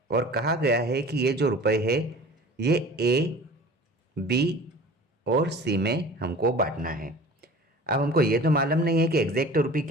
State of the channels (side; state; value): both; normal; correlation 0.43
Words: और कहा गया है कि ये जो रुपए है ये ए बी और सी में हमको बांटना है। अब हमको ये तो मालूम नहीं है कि एग्जैक्ट रुपी